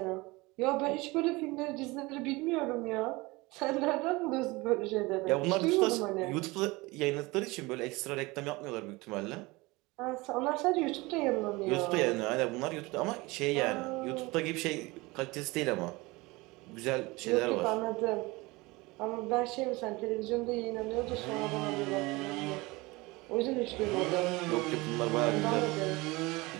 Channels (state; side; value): quieter; left; 23.0 dB